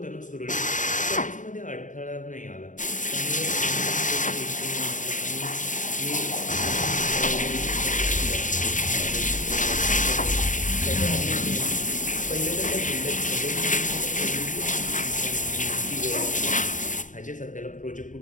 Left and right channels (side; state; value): right; late; 0.37 ms